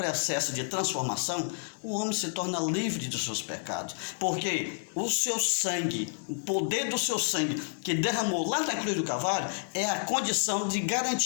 de transformação, o homem se torna livre dos seus pecados. Porque o seu sangue, o poder do seu sangue que derramou lá na cruz do Calvário, é a condição de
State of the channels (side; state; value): right; silent; digital silence